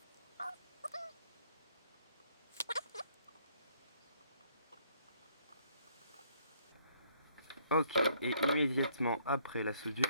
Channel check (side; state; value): both; inverted; correlation -0.66